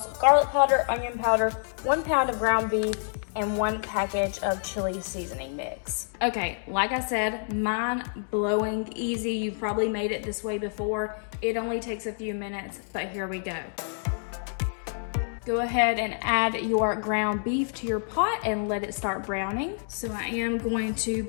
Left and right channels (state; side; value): silent; right; digital silence